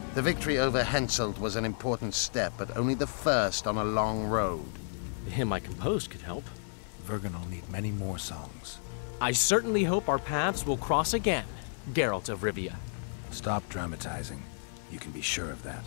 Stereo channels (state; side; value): silent; right; 57 dB below the other